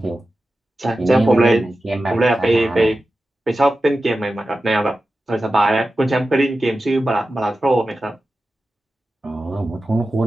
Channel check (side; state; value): both; normal; correlation 0.93